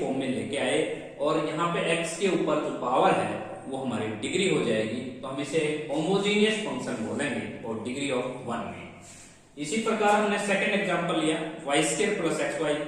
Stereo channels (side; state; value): both; identical; correlation 1.00